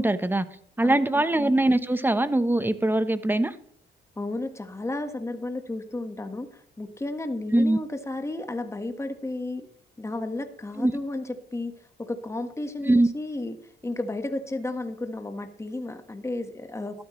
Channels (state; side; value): normal; both; correlation 0.91